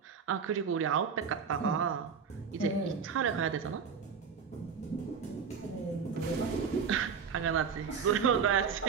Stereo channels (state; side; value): quieter; left; 6.3 dB